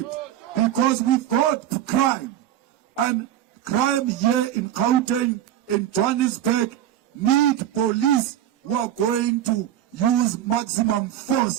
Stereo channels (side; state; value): left; quieter; 11.7 dB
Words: Because we've got crime, and crime here in Gauteng, in Johannesburg, need police who are going to use maximum